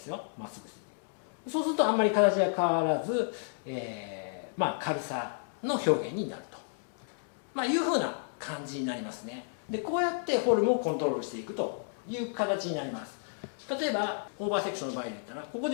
すよ。まっすぐすいていく。そうするとあんまり形が変わらず、軽さの表現になると、いうふうな感じになりますね。で、こうやってフォルムをコントロールしていくという形になります。例えばオーバーセクションの場合で言ったら、ここで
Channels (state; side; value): silent; right; digital silence